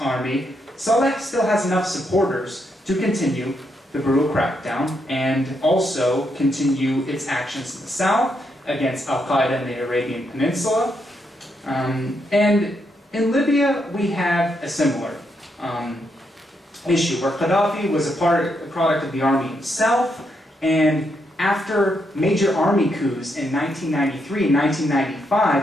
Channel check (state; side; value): normal; both; correlation 0.79